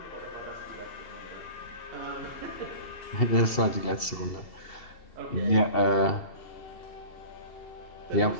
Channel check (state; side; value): late; right; 2.7 ms